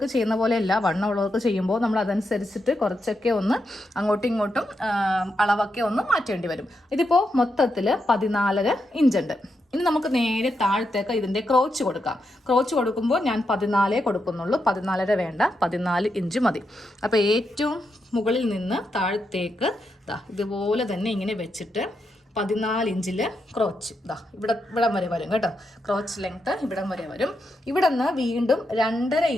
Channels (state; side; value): normal; both; correlation 0.84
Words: ചെയ്യുന്ന പോലെയല്ല, വണ്ണമുള്ളവർക്ക് ചെയ്യുമ്പോൾ നമ്മൾ അതനുസരിച്ചിട്ട് കുറച്ചൊക്കെ ഒന്ന് അങ്ങോട്ടും ഇങ്ങോട്ടും അളവൊക്കെ ഒന്ന് മാറ്റേണ്ടി വരും. ഇതിപ്പോൾ മൊത്തത്തിൽ 14.5 ഇഞ്ചുണ്ട്. ഇനി നമുക്ക് നേരെ താഴത്തേക്ക് ഇതിൻ്റെ ക്രോച്ച് കൊടുക്കാം. ക്രോച്ച് കൊടുക്കുമ്പോൾ ഞാൻ 14 കൊടുക്കുന്നുള്ളൂ, 14.5 വേണ്ട, 14 ഇഞ്ച് മതി. അപ്പോൾ ഏറ്റവും മുകളിൽ നിന്ന് താഴത്തേക്ക് ഇതുപോലെ തന്നെ ഇങ്ങനെ വെച്ചിട്ട് 14 ഇഞ്ചിൽ ക്രോച്ച് ഇവിടം വരെ വരും കേട്ടോ. ക്രോച്ച് ലെങ്ത്ത് ഇവിടം വരെ വരും. ഇവിടെ നിന്ന് വീണ്ടും 2.5